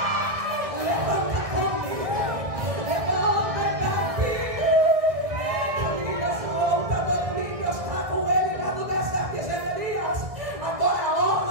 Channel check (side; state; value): left; late; 1.9 ms